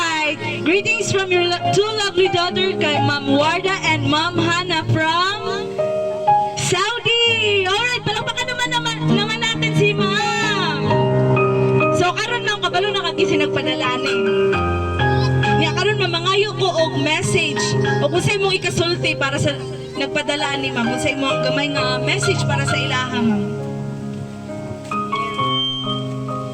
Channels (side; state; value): both; identical; correlation 1.00